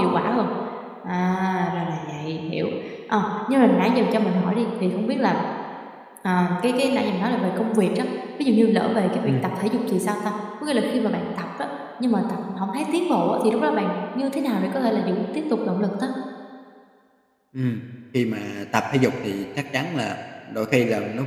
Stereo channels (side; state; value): both; identical; correlation 1.00